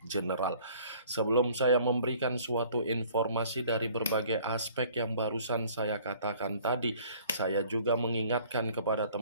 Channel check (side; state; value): both; inverted; correlation -0.55